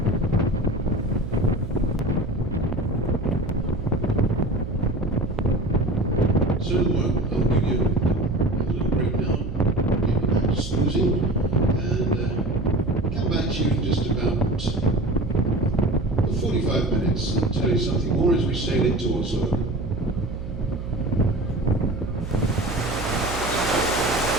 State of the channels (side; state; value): right; noise; hum, 8 dB below the sound